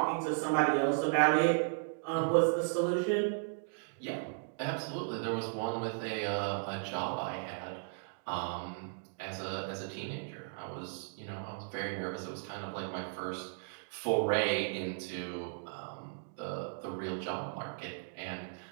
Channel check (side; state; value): left; silent; digital silence